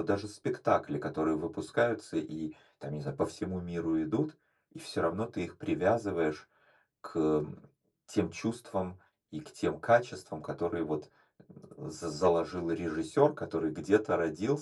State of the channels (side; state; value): both; identical; correlation 1.00